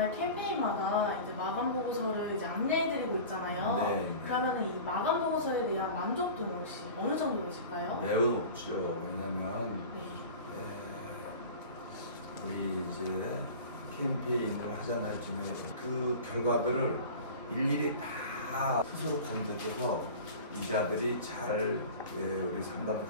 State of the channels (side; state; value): both; inverted; correlation -0.36